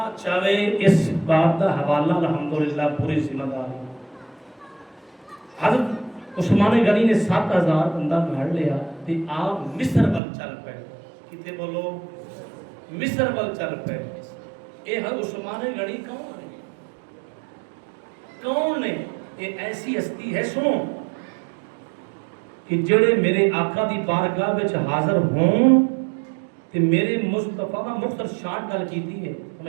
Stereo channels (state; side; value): drops out; left; at 10.2 s